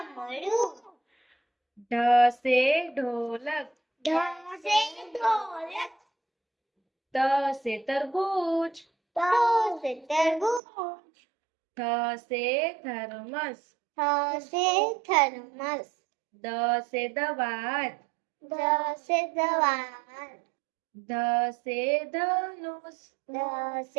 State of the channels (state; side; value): drops out; left; at 10.6 s